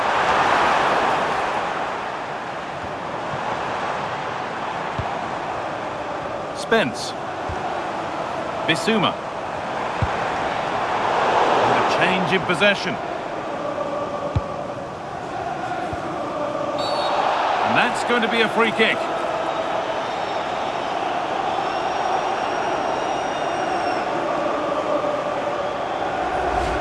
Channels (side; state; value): both; identical; correlation 1.00